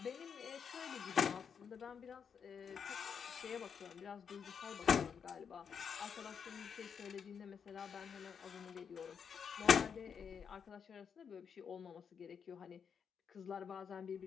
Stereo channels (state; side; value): quieter; right; 6.9 dB